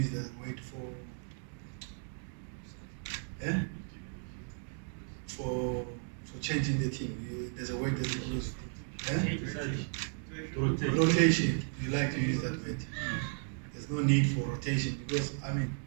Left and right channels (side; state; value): left; silent; 55 dB below the other